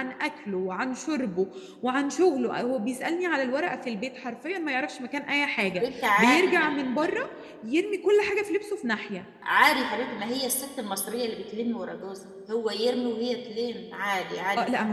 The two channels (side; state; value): both; identical; correlation 1.00